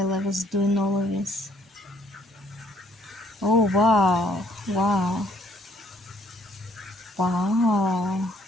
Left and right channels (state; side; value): normal; both; correlation 0.65